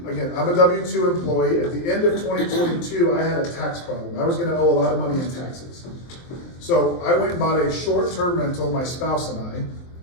Again, I'm a W-2 employee. At the end of 2022, I had a tax problem. I was gonna owe a lot of money in taxes. So I went and bought a short-term rental, my spouse and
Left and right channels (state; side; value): late; right; 23 ms